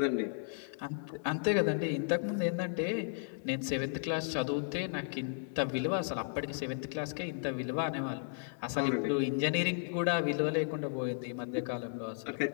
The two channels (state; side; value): silent; right; 55 dB below the other